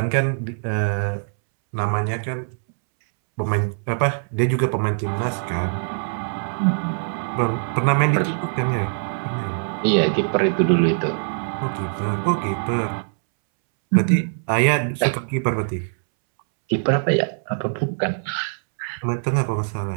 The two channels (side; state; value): left; silent; 64 dB below the other